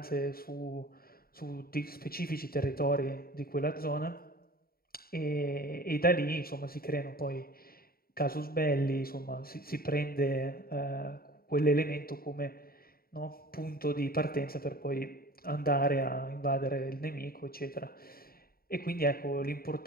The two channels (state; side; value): late; right; 0.43 ms